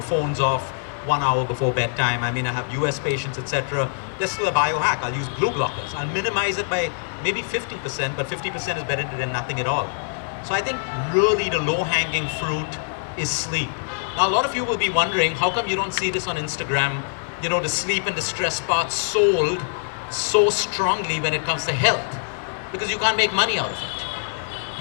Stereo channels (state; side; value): silent; right; 56 dB below the other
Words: Phones off 1 hour before bedtime. I have US patients, etc. There's still a biohack. I'll use blue blockers. I'll minimize it by maybe 50%, but 50% is better than nothing at all. So I think really the low-hanging fruit is sleep. Now, a lot of you will be wondering, how come you don't see this on Instagram? The sleep and the stress part sold so strongly when it comes to health, because you can't make money out of